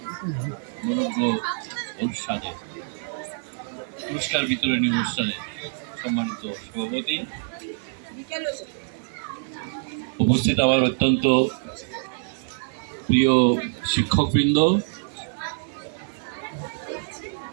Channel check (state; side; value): silent; left; 61 dB below the other